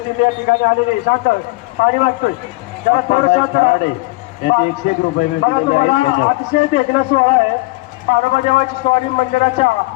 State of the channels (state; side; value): quieter; right; 23.3 dB